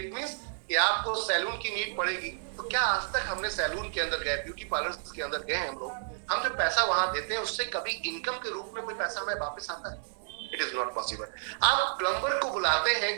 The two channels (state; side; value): silent; left; digital silence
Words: मींस कि आपको सैलून की नीड पड़ेगी, तो क्या आज तक हमने सैलून के अंदर गए, ब्यूटी पार्लर के अंदर गए हैं हम लोग? हम जो पैसा वहां देते हैं उससे कभी इनकम के रूप में कोई पैसा हमें वापस आता है? It is not possible. आप प्लम्बर को बुलाते हैं